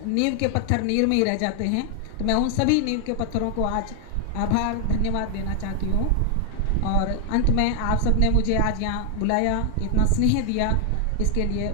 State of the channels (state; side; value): different; both; correlation 0.00